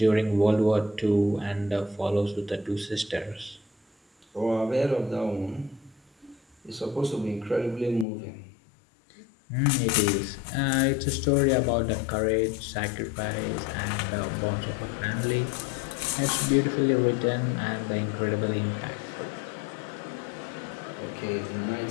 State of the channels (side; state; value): right; drops out; at 8.1 s